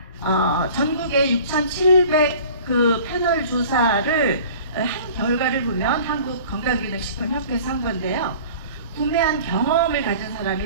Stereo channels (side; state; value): both; inverted; correlation -0.45